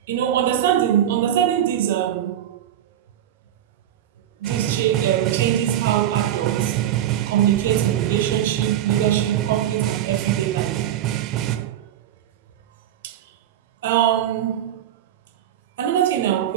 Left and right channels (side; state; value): left; quieter; 11.3 dB